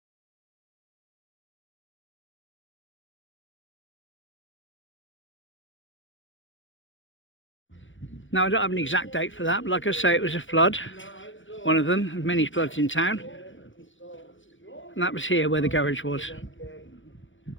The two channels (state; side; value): late; right; 0.56 ms